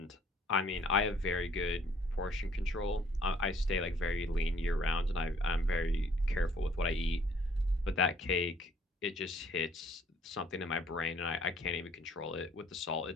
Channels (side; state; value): both; normal; correlation 0.60